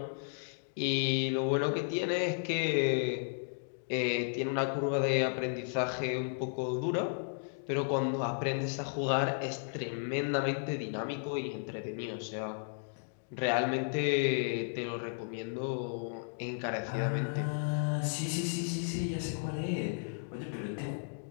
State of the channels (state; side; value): silent; right; digital silence